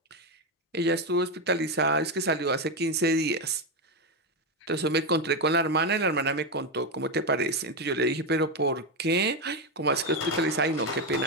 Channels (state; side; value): normal; both; correlation 0.09